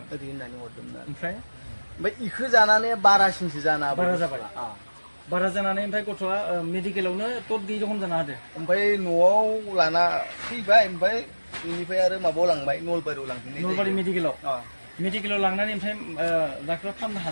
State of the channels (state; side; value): inverted; both; correlation -1.00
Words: ओरै होननानै हरदोंमोन। ओमफ्राय बेखौ जानानै बारासिनसो जाना बारा जाबाय। बारा जानानै ओमफ्राय गथ'आ मेडिकेलावनो टट गैयि रखम जाना होदो। ओमफ्राय न'आव लाना फैबाय, ओमफ्राय बेनिफ्राय आरो माबायाव लांबाय, नलबारियाव लांफिननाय। नलबारि मेडिकेलाव लांनानै ओमफ्राय डाक्टरा फाहामनो